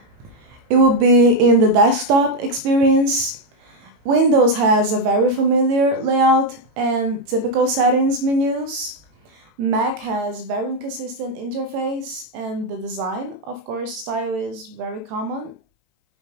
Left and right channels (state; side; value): late; left; 18 ms